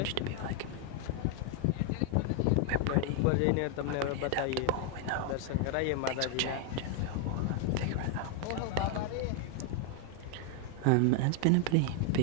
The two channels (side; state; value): both; different; correlation 0.00